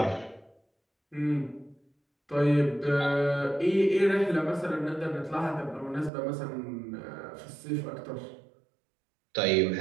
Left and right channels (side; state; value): left; drops out; at 6.1 s